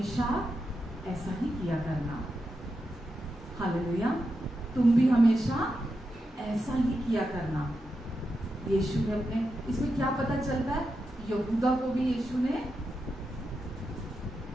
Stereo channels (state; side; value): normal; both; correlation 0.87